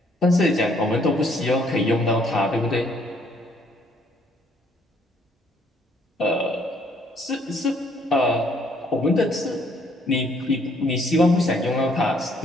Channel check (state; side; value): normal; both; correlation 0.65